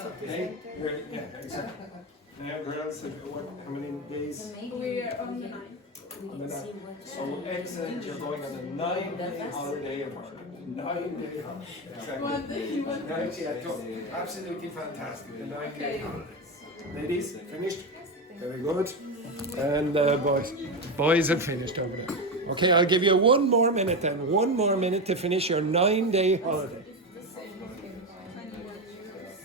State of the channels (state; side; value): normal; both; correlation 0.15